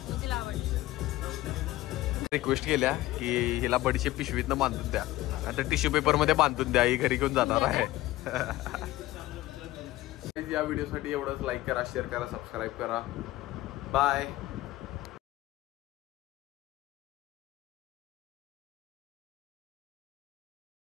रिक्वेस्ट केल्या की हिला बडीचे पिशवीतनं बांधून द्या, आता टिश्यू पेपर मध्ये बांधून द्या, ही घरी घेऊन जाणार आहे. या व्हिडिओसाठी एवढंच. लाईक करा, शेअर करा, सबस्क्राईब करा. बाय.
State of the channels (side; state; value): right; quieter; 16.9 dB